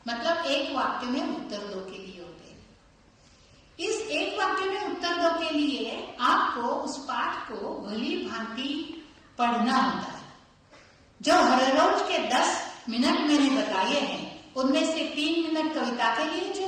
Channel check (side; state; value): both; identical; correlation 1.00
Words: मतलब एक वाक्य में उत्तर दो के लिए होते हैं। इस एक वाक्य में उत्तर दो के लिए आपको उस पाठ को भली भांति पढ़ना होता है। जो हर रोज के 10 मिनट मैंने बताए हैं, उनमें से 3 मिनट कविता के लिए